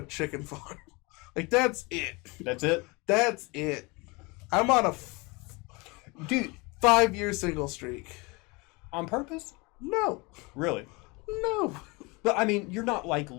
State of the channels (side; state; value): right; quieter; 26.7 dB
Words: chicken farm. That's it. That's it? That's it. I'm on a Dude, 5-year single streak. on purpose? No. Really? No. But, I mean, you're not,